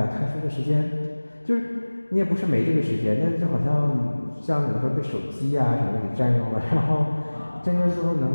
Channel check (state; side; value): inverted; both; correlation -1.00